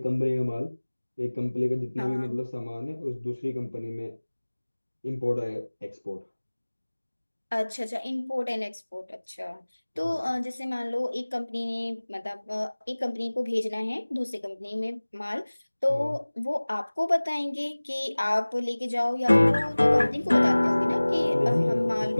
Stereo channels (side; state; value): both; inverted; correlation -1.00